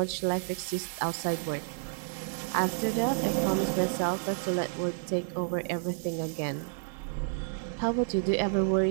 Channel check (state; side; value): silent; left; digital silence